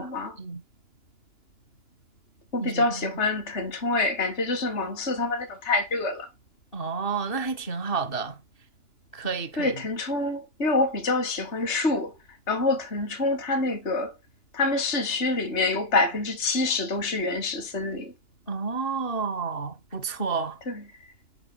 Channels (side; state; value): right; late; 3.3 ms